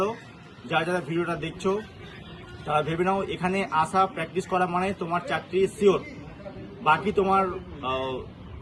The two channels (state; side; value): identical; both; correlation 1.00